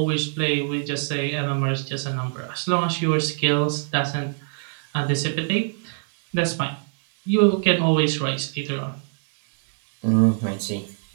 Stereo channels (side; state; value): left; silent; 56 dB below the other